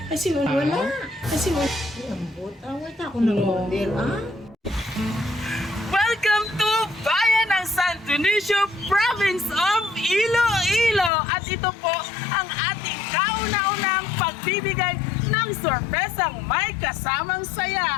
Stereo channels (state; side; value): drops out; right; at 11.1 s